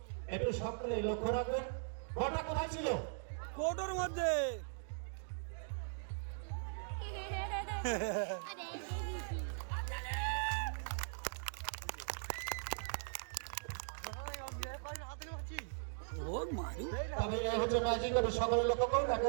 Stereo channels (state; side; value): silent; left; digital silence